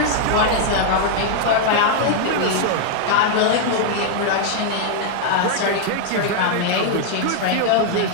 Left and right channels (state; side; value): different; both; correlation -0.01